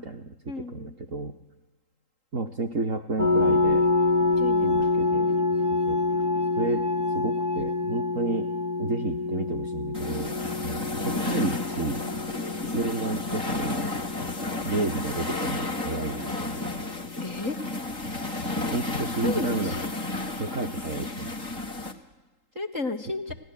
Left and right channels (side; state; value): left; late; 3.8 ms